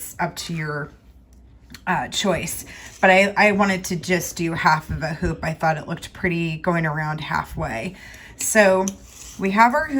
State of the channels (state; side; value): identical; both; correlation 1.00